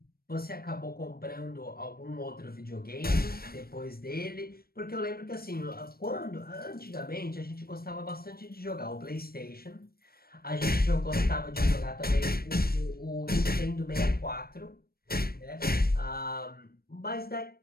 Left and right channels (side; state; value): right; late; 0.44 ms